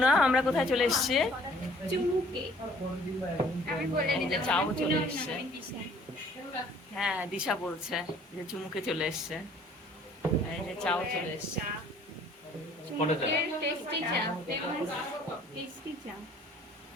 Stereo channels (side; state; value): both; normal; correlation 0.56